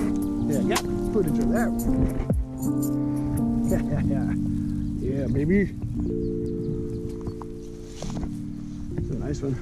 baby. It's a nice one.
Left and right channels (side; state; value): both; identical; correlation 1.00